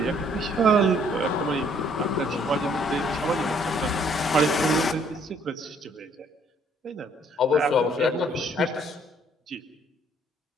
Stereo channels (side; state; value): both; normal; correlation 0.63